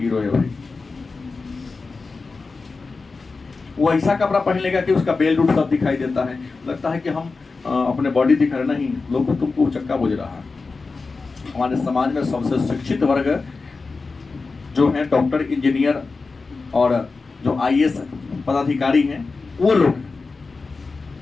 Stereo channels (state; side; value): quieter; right; 4.1 dB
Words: है भाई। वो ऐसा कपड़ा पहन लेगा कि उसका बेल्ट उल्ट सब दिखाई देता है, लगता है कि हम अपने बॉडी दिखा रहे, नहीं, लोग तुमको उचक्का बुझ रहा है। हमारे समाज में सबसे शिक्षित वर्ग जो है डॉक्टर, इंजीनियर और जो आईएएस पदाधिकारी हैं, वो लोग,